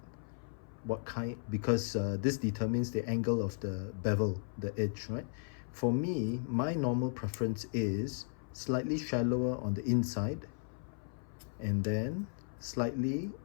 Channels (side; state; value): right; silent; 54 dB below the other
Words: What kind? Because this determines the angle of the bevel, the edge, right? For me, my normal preference is slightly shallower on the inside and then slightly